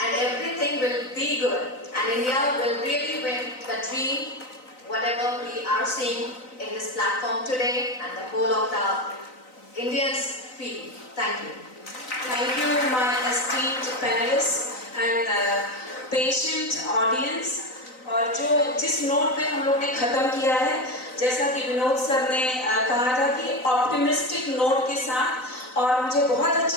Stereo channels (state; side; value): late; right; 3.9 ms